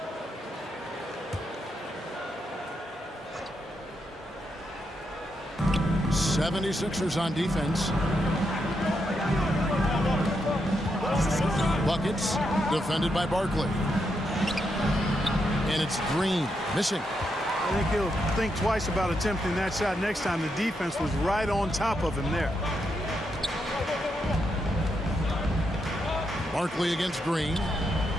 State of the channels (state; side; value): normal; both; correlation 0.82